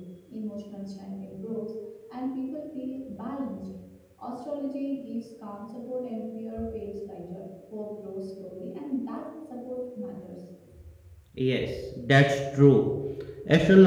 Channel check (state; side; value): identical; both; correlation 1.00